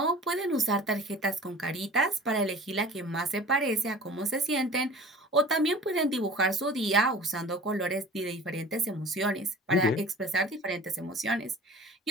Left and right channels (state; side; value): normal; both; correlation 0.42